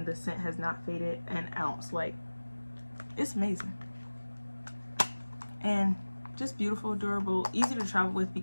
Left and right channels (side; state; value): both; inverted; correlation -1.00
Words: the scent has not faded an ounce. Like, it's amazing and just beautiful, durable, easy to travel with